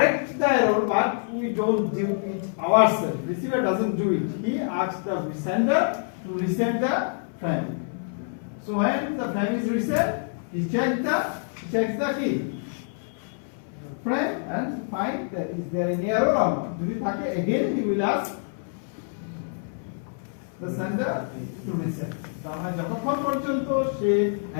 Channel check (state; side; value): silent; right; 59 dB below the other